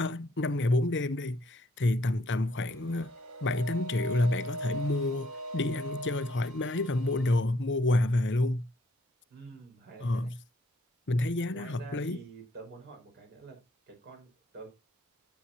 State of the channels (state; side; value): normal; both; correlation 0.69